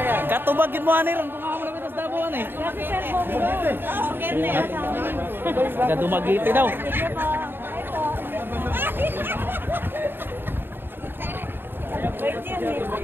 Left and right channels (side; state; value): left; late; 0.099 ms